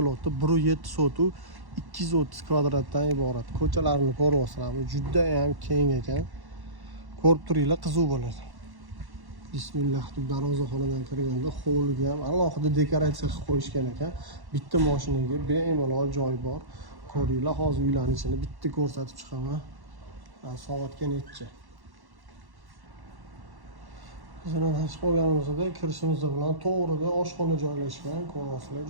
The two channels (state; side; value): late; left; 1.1 ms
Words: 1.7 sotuv 230 kvadratdan iborat. Ko'chalarni ko'ryapsizlarmi? Juda ham keng ekan. Ko'rib turinglar, qiziq bo'ladi. Bismillah deb darvozaxonadan kirganda hovliga ham alohida dekoratsiya qilib qo'yishgan ekan. Bitta mashinaga bemalol joy bor. Ko'ringlar, hozir uylarning ichini bitta ko'rsatib chiqaman. Soatga necha? Bizning chiqib olganimizda kirishimiz bilan to'g'rida oshxona joylashgan. Ko'ryapsizlar,